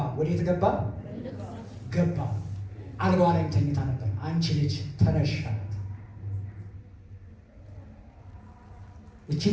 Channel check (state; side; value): identical; both; correlation 1.00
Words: ወዴት ገባ? ገባ። አልጋዋ ላይም ተኝታ ነበር። አንቺ ልጅ ተነሽ አላት። እቺ